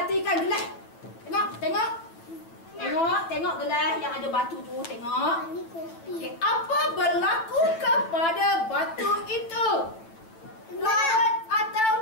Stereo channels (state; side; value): late; right; 9.0 ms